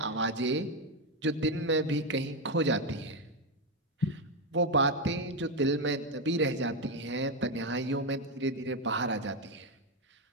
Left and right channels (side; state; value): both; normal; correlation 0.08